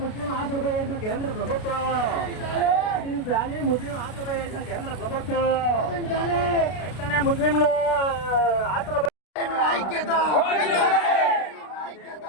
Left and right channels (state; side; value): late; right; 33 ms